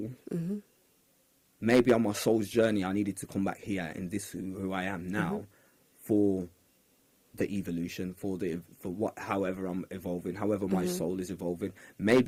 maybe on my soul's journey, I needed to come back here in this who I am now for the evolution, however I'm evolving, however my soul is evolving.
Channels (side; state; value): both; identical; correlation 1.00